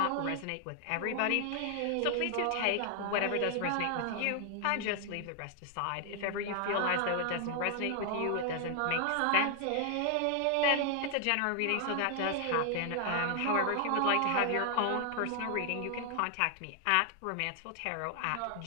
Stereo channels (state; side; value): different; both; correlation 0.00